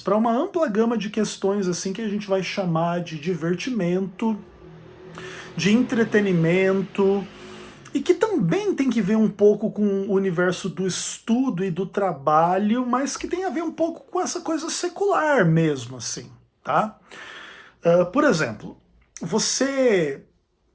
uma ampla gama de questões assim que a gente vai chamar de divertimento, de entretenimento, e que também tem que ver um pouco com o universo do estudo e do trabalho, mas que tem a ver um pouco com essa coisa secular mesmo, assim, tá? Por exemplo, você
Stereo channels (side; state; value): both; identical; correlation 1.00